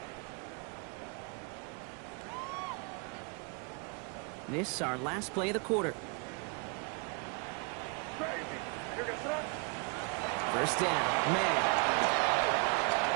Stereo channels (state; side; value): quieter; left; 34.6 dB